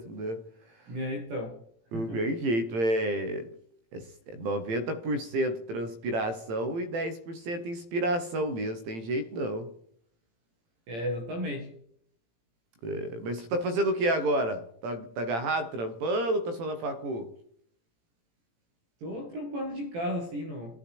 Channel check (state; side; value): late; left; 18 ms